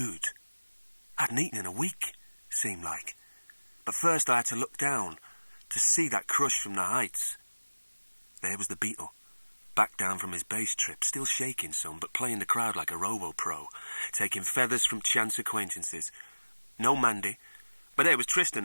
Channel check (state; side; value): inverted; both; correlation -1.00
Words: I hadn't eaten in a week, seemed like. But first I had to look down to see that crush from the heights. There was the Beetle, back down from his bass trip, still shaking some, but playing the crowd like a robo-pro, taking feathers from chance acquaintances. No Mandy, but there was